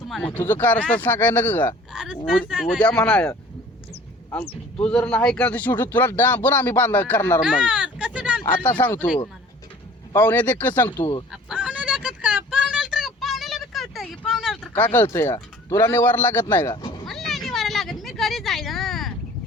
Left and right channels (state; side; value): normal; both; correlation 0.49